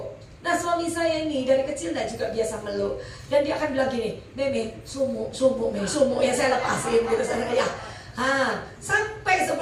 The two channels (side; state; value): both; identical; correlation 1.00